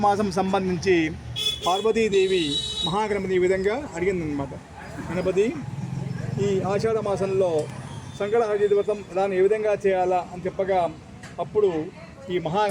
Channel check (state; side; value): identical; both; correlation 1.00